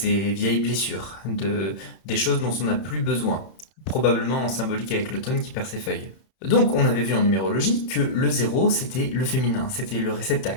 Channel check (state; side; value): late; right; 31 ms